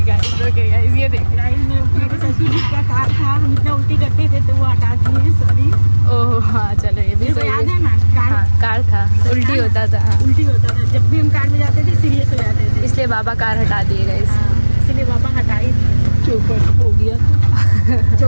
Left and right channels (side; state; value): both; inverted; correlation -1.00